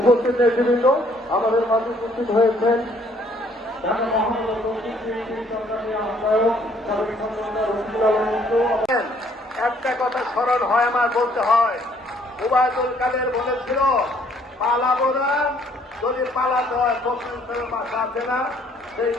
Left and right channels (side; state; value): both; normal; correlation 0.63